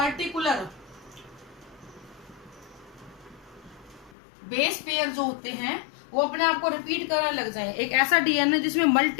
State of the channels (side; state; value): right; drops out; at 4.2 s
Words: बेस पेयर जो होते हैं वो अपने आप को रिपीट करने लग जाए। एक ऐसा DNA जिसमें